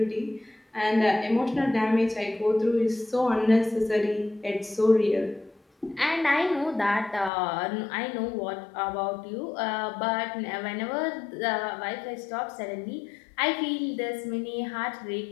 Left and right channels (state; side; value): drops out; right; at 7.3 s